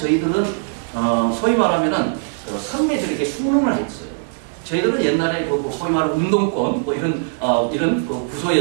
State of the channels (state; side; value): silent; left; digital silence